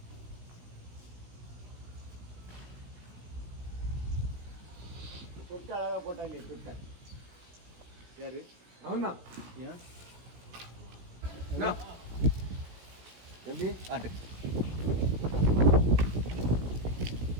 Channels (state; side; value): late; left; 17 ms